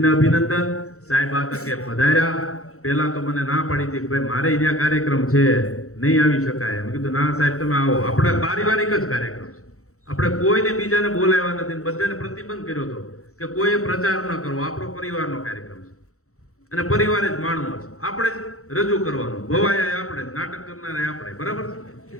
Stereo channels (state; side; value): late; right; 0.64 ms